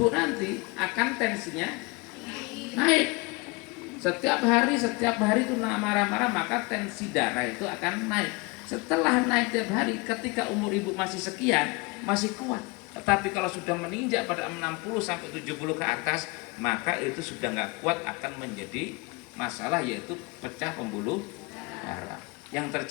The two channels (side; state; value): right; quieter; 26.2 dB